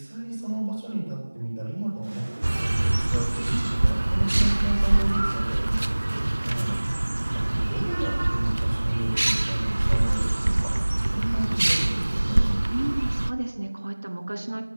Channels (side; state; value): both; inverted; correlation -1.00